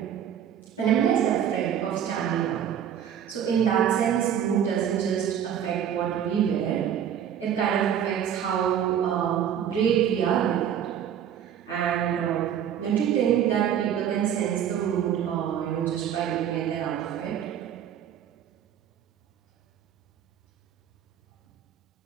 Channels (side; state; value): left; quieter; 9.3 dB